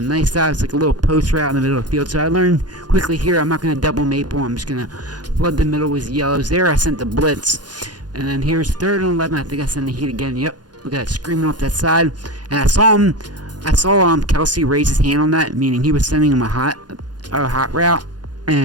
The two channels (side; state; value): left; late; 0.69 ms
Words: nice dive. It's like a little post route in the middle of the field. So I learned quickly here I'm not going to double maple. I'm just going to flood the middle with yellows. There I sent the blitz. And then here's 3rd and 11. I think I sent the heat again. Yep. Look at that, screaming off that side. And I saw Kelsey raise his hand on that, meaning he was sending him a hot route.